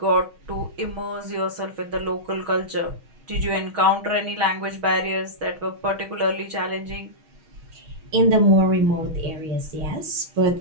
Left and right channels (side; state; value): left; late; 6.3 ms